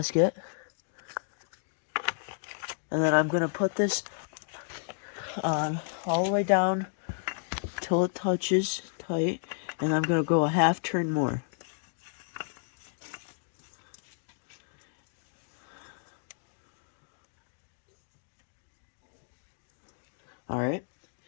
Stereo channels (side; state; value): right; silent; digital silence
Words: And then I'm going to put this on all the way down till it touches tight. And I'm going to go a half turn more. Alright.